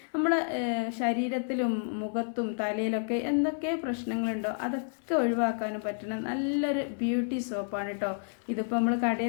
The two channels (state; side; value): silent; right; digital silence